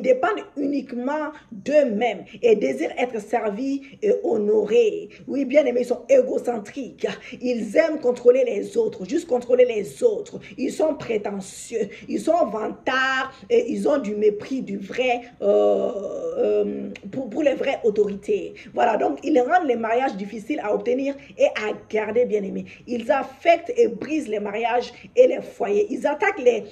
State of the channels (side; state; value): both; identical; correlation 1.00